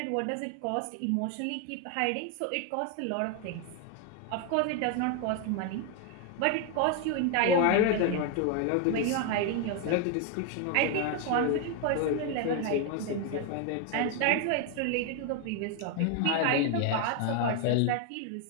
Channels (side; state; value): both; different; correlation 0.01